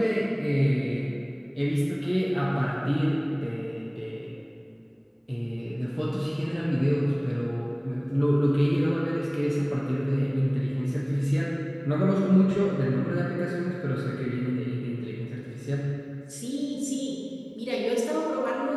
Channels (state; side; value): identical; both; correlation 1.00